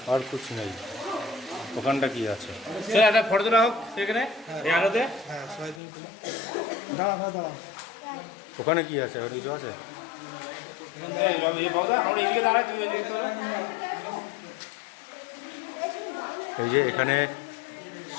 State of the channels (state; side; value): drops out; right; at 5.8 s